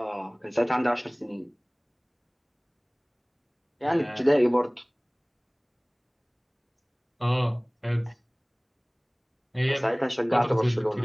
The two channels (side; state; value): both; identical; correlation 1.00